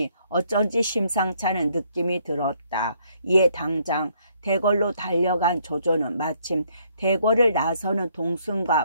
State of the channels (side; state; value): both; inverted; correlation -0.68